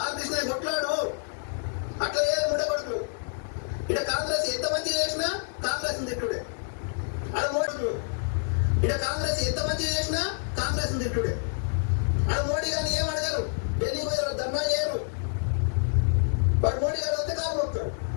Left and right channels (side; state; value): right; silent; digital silence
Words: ఆర్ కృష్ణ కొట్లాడు. అట్లా ఏ ఉండకూడదు. ఇక్కడ కాంగ్రెస్ ఎంత మంచి చేసినా కాంగ్రెస్ తిట్టుడే. అక్కడ మోడీ ఇక్కడ కాంగ్రెస్ ఎంత మంచి చేసినా కాంగ్రెస్ తిట్టుడే. అక్కడ మోడీ గారిని ఏం అడగరు, ఢిల్లీ పోయి ధర్నా చేయరు. వాడు మోడీ గారు వస్తే కాలు మొక్తారు.